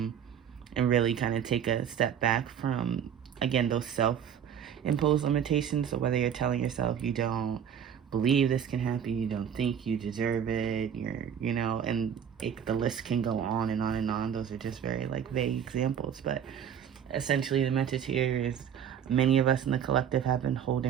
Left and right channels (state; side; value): quieter; left; 8.6 dB